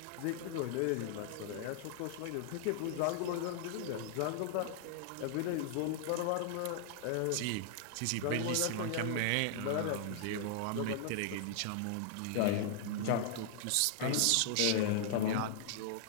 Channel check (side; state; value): both; different; correlation -0.01